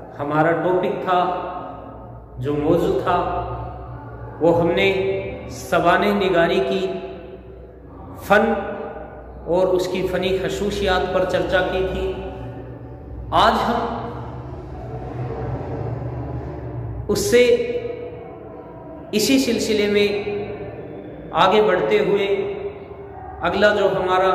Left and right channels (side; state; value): both; identical; correlation 1.00